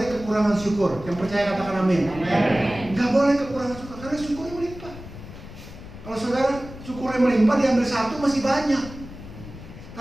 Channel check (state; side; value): noise; left; rumble, 14 dB below the sound